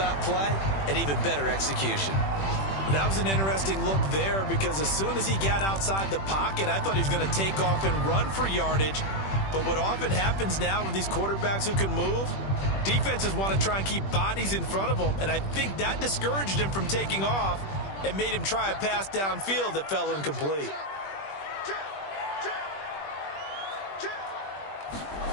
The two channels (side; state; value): right; late; 21 ms